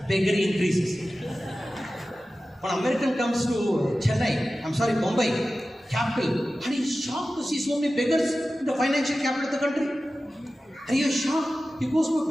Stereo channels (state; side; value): normal; both; correlation 0.95